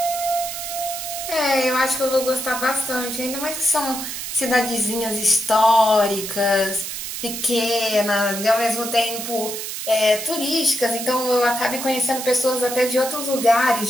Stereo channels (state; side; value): noise; right; hiss, 6 dB below the sound